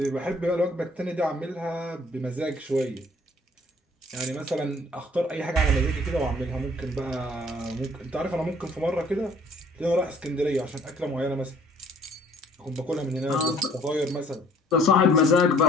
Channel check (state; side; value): normal; both; correlation 0.56